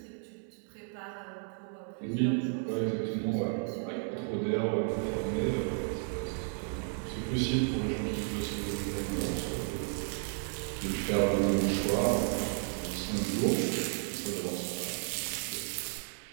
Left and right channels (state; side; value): silent; left; 56 dB below the other